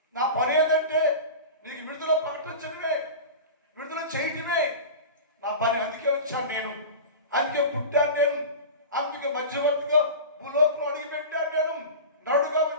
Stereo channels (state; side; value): inverted; both; correlation -0.31